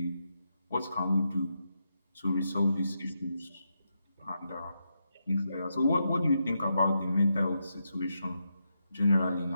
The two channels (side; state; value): both; inverted; correlation -0.84